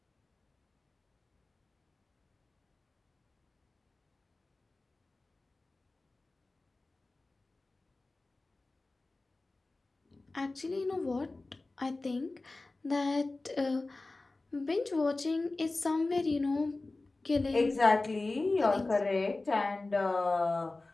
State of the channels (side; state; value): right; quieter; 3.2 dB